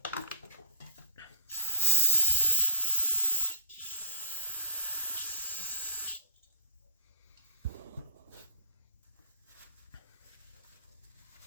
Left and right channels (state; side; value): inverted; both; correlation -0.32